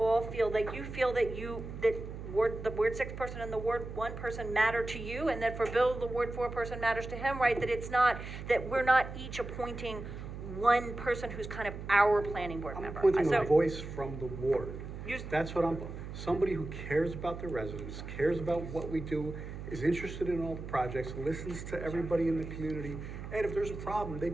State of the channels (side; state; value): right; noise; hum, 9 dB below the sound